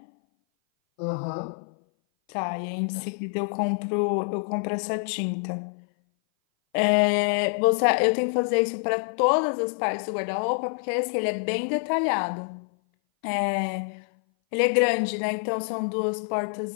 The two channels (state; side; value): silent; right; 58 dB below the other